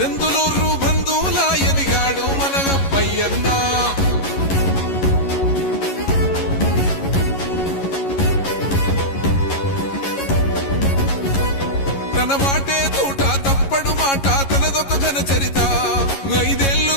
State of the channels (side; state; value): right; late; 11 ms